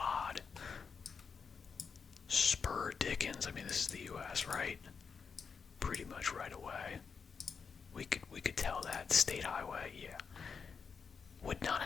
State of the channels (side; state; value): right; quieter; 5.8 dB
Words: Spur Dickens. I mean, this is the U.S., right? Pretty much right away. We could tell that. State highway, yeah. Would not